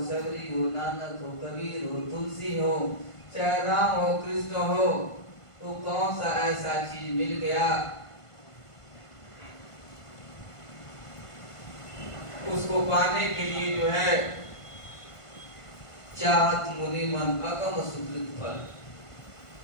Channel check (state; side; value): late; right; 1.5 ms